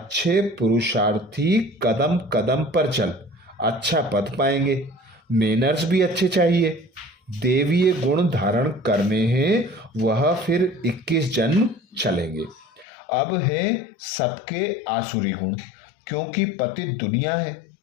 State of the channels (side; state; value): right; drops out; at 12.9 s